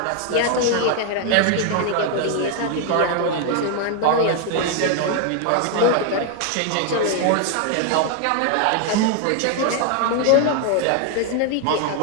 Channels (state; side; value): different; both; correlation 0.00